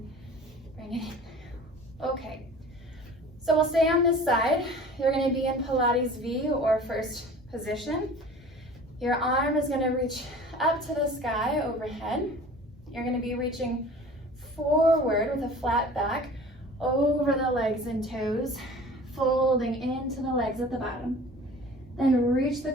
bring it in. Okay, so we'll stay on this side. You're going to be in Pilates V or first position. Your arm is going to reach up to the sky overhead. You're going to be reaching forward with a flat back over the legs and toes, folding into the legs at the bottom. Then reach the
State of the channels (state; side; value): normal; both; correlation 0.43